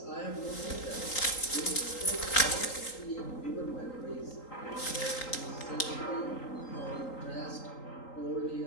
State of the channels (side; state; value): right; late; 3.8 ms